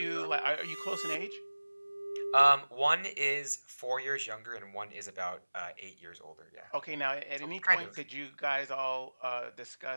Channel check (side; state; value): both; inverted; correlation -1.00